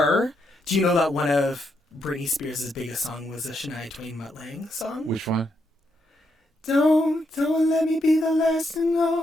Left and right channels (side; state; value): both; normal; correlation 0.79